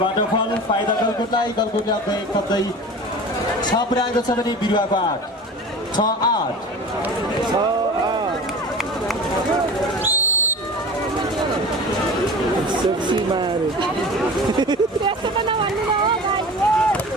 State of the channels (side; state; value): both; normal; correlation 0.37